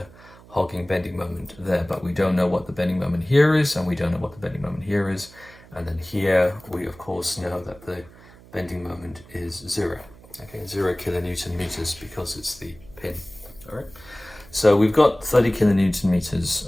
hogging bending moment there, but we don't know what the bending moment here is, and we don't know what the bending moment here is. And then here, we of course know that the bending moment is 0. Okay, 0 kilonewton meters because it's the pin. All right. So we've got 30 kilonewton meters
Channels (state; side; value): noise; right; hum, 22 dB below the sound